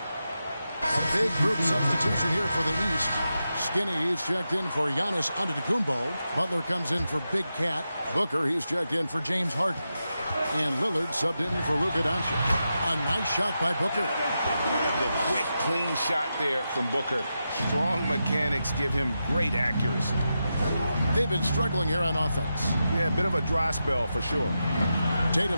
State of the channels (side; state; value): both; inverted; correlation -0.89